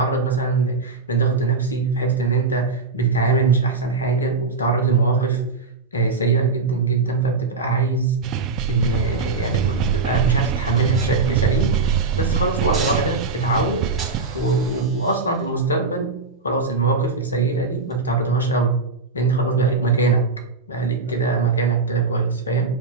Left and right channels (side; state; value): left; quieter; 4.2 dB